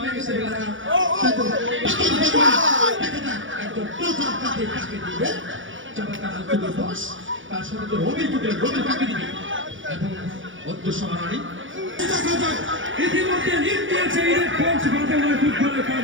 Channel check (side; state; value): left; late; 0.56 ms